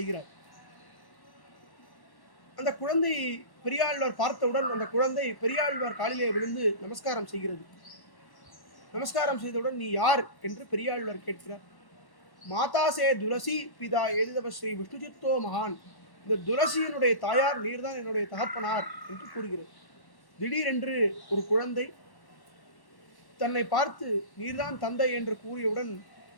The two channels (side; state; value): right; late; 1.1 ms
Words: அந்த குழந்தை பெரியாழ்வார் பார்த்தவுடன் அந்த குழந்தை பெரியாழ்வார் காலிலே விழுந்து நமஸ்காரம் செய்கிறது. நமஸ்காரம் செய்தவுடன் நீ யார் என்று பெரியாழ்வார் கேட்கிறார். மாதாசே துளசி பிதா ஏதிதவ ஸ்ரீ விஷ்ணுசித்தோ மகான், இந்த துளசியினுடைய தாயார் நீர்தான் என்னுடைய தகப்பனார் என்று கூறுகிறது. திடீரென்று ஒரு குழந்தை தன்னை பார்த்து நீர்தான் தந்தை என்று கூறியவுடன்